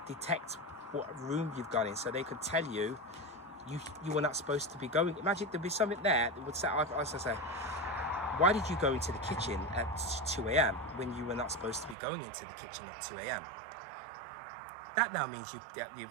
detect what room you've gone in. So they could tell you, you were not supposed to be going. Imagine there'd be something there that would say, I say, why did you go into the kitchen at 2 a.m. when you were not supposed to be going into the kitchen at 2 a.m.? That now means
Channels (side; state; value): left; drops out; at 12.0 s